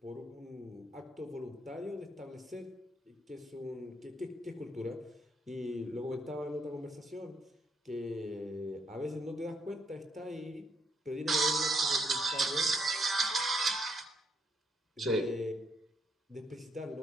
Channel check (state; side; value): normal; both; correlation 0.75